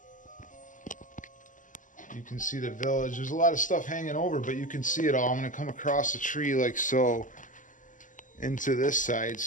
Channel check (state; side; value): late; right; 0.37 ms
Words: You can see the village. There's a lot of stuff hanging over, but you can see it all. I'm going to come across the tree like so into this side